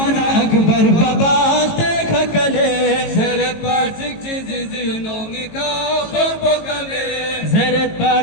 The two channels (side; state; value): right; late; 18 ms